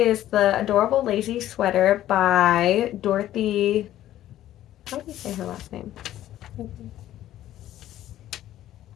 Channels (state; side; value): quieter; right; 13.1 dB